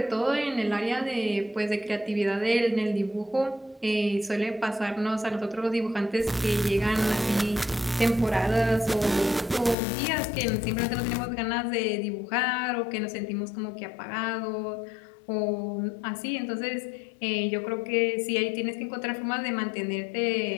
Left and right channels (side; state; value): right; drops out; at 9.8 s